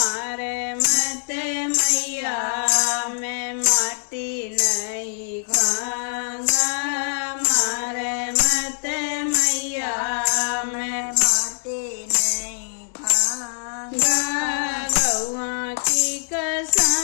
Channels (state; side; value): silent; right; digital silence